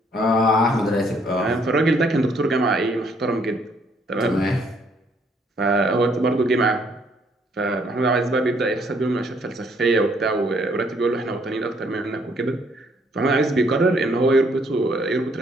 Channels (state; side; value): normal; both; correlation 0.67